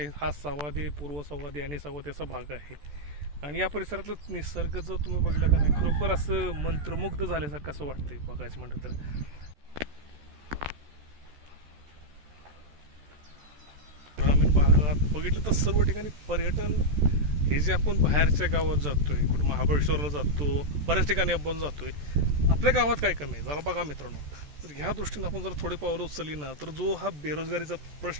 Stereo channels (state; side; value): late; left; 14 ms